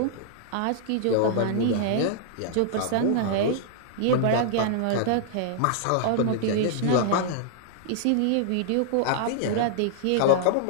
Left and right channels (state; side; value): different; both; correlation -0.01